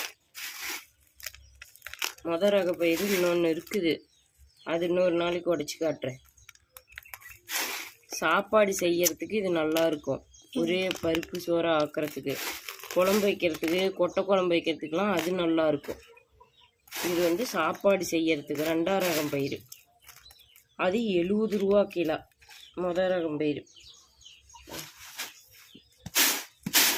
முதல் ரக பயிர் இன்னொன்று இருக்குது. அது இன்னொரு நாளைக்கு உடச்சி காட்டுறேன். சாப்பாடு செய்யறதுக்கு இது நல்லா இருக்கும். ஒரே பருப்பு சோறை ஆக்கிறதுக்கு, குழம்பு வைக்கிறதுக்கு, கொட்டை குழம்பு வைக்கிறதுக்கெலாம் அது நல்லா இருக்கும். இது சாப்பாடு செய்யறதுக்கு ரெண்டாவது ரகம் பயிர். அது 70 ரூபா கிலோ முதல் ரகம் பயிர்.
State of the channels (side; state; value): both; identical; correlation 1.00